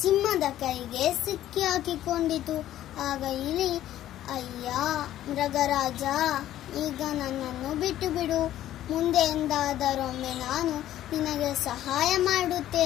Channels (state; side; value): quieter; right; 12.9 dB